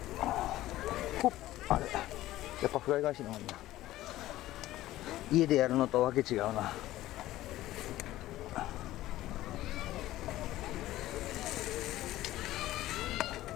ほっ、あれやっぱフライ返しの方がいいな。家でやるのとわけ違うな。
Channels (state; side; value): quieter; right; 15.4 dB